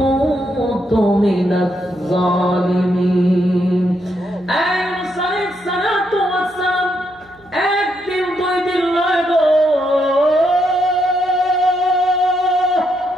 মিনাজ জালিমিন। ইউনূস আলাইহিস সালাতু ওয়াস সালাম একদিন 2 দিন নয় গো,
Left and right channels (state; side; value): noise; right; hum, 30 dB below the sound